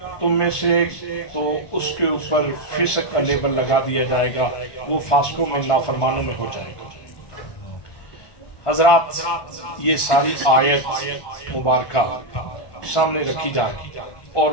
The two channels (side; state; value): right; late; 1.2 ms